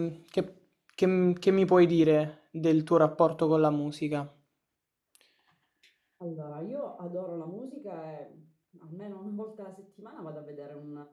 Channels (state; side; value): identical; both; correlation 1.00